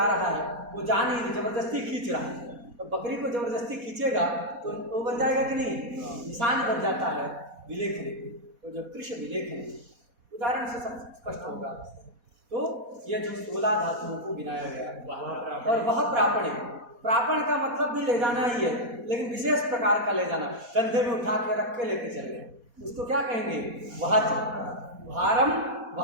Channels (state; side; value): late; left; 4.2 ms